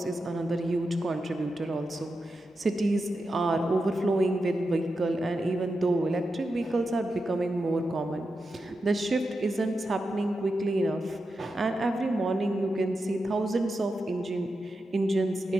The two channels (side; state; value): both; normal; correlation 0.89